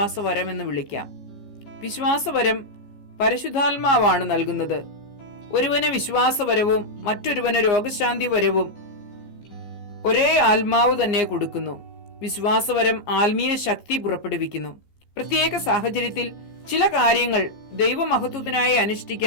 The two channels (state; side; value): late; right; 15 ms